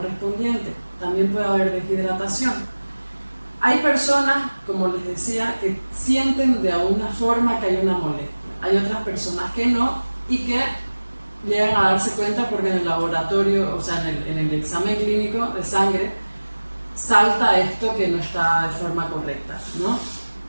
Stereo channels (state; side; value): inverted; both; correlation -1.00